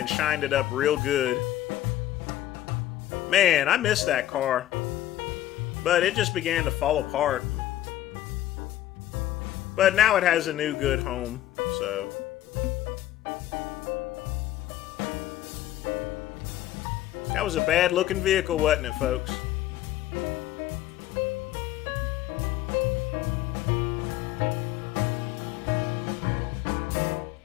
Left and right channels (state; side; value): quieter; right; 13.6 dB